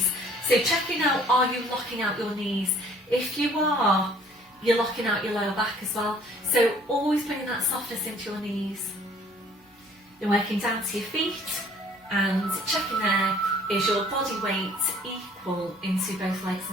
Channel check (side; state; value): both; normal; correlation 0.56